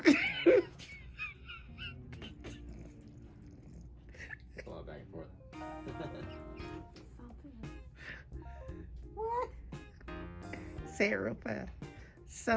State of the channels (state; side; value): identical; both; correlation 1.00